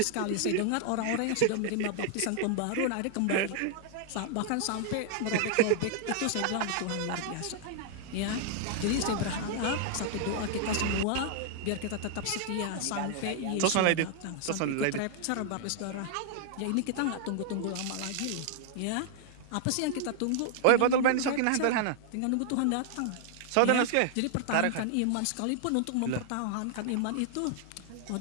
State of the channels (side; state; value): both; different; correlation -0.01